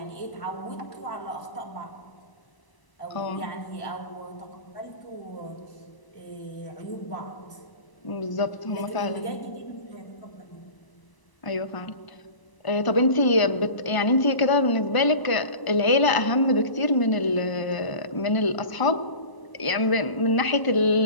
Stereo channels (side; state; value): right; late; 1.0 ms